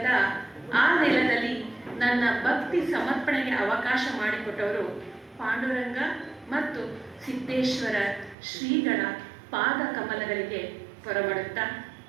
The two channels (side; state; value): left; drops out; at 8.3 s